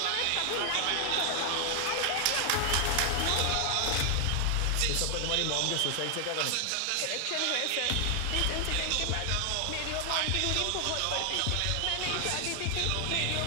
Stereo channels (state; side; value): different; both; correlation 0.00